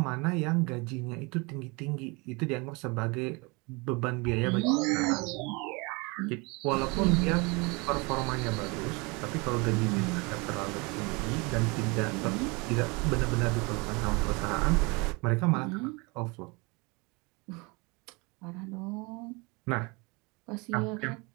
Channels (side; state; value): left; quieter; 27.9 dB